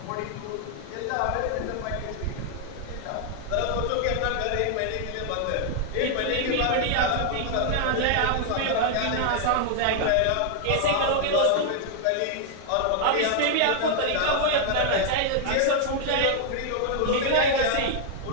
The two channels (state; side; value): different; both; correlation 0.00